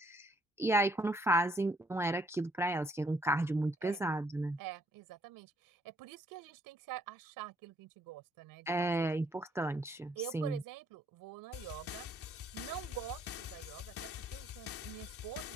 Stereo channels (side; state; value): both; normal; correlation 0.67